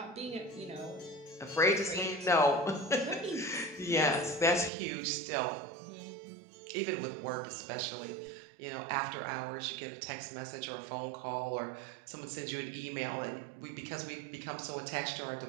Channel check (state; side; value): drops out; left; at 4.7 s